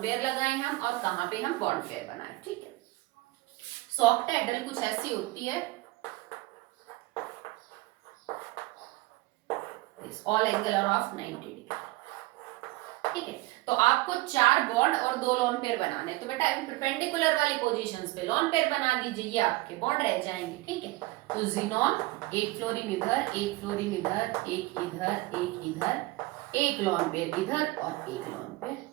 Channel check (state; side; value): quieter; left; 20.4 dB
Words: पेयर लगाएं हम और कहां पे हम बॉन्ड पेयर बनाएं। ठीक है, सो ऑक्टाहेड्रल कुछ ऐसी होती है, all angle are of 90 degree. ठीक है, तो आपको 4 बॉन्ड और 2 लोन पेयर बनाने, तो बेटा परपेंडिकुलर वाली पोजीशंस पे लोन पेयर बना दीजिए, ये आपके बॉन्ड रह जाएंगे। ठीक है, तो जिनोन, एक फ्लोरीन इधर, एक फ्लोरीन इधर, एक इधर, एक इधर, एक लोन पेयर इधर और एक लोन पेयर